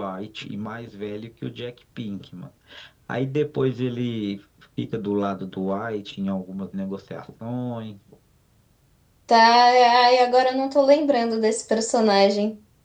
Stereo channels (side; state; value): both; identical; correlation 1.00